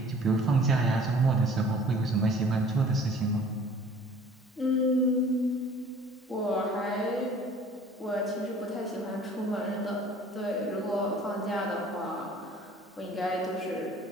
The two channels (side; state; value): both; normal; correlation 0.50